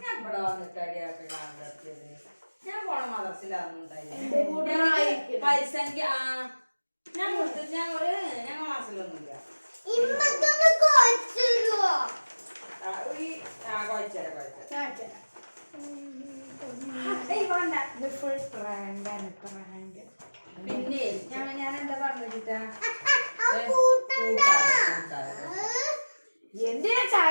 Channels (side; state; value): both; inverted; correlation -1.00